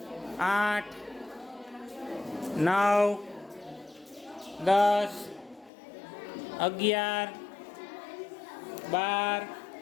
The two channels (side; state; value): right; drops out; at 5.7 s